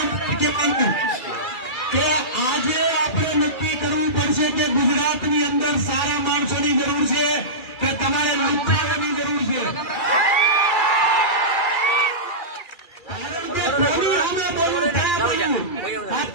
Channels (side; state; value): right; late; 2.3 ms